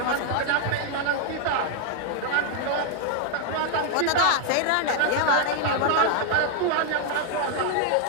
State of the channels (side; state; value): both; different; correlation 0.00